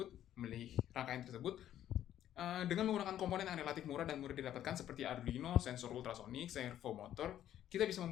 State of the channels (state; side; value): quieter; right; 11.5 dB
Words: memilih rangkaian tersebut? Dengan menggunakan komponen yang relatif murah dan mudah didapatkan seperti Arduino, sensor ultrasonik, servomotor, kita bisa